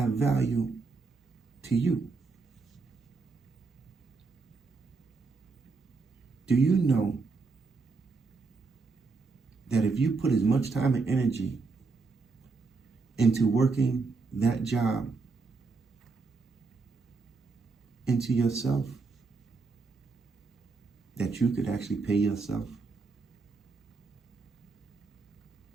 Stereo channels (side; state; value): left; quieter; 4.3 dB